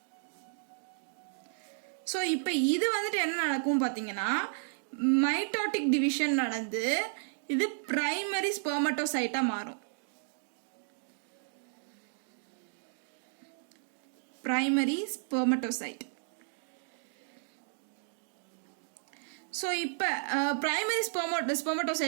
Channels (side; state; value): left; silent; digital silence